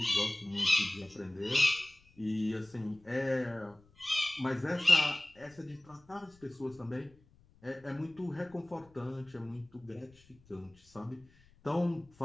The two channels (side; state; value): left; noise; rumble, 28 dB below the sound